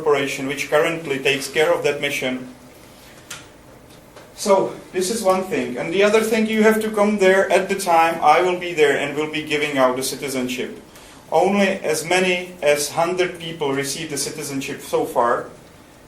which currently takes care of that mission. So, this is one thing. And the other thing, you have to come there at the time. I will be there and will be giving out the citizenship. Only as many as 100 people received the citizenship so far.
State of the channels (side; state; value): both; identical; correlation 1.00